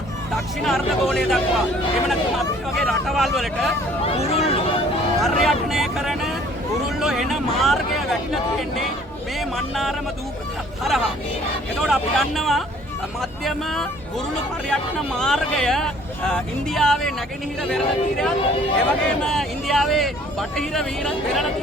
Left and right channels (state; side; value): normal; both; correlation 0.56